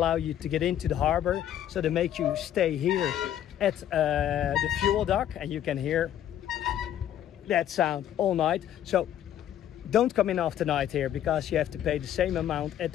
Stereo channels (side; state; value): right; quieter; 11.0 dB